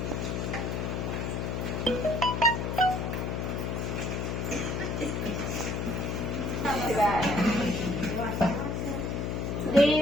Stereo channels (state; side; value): noise; left; hum, 1 dB below the sound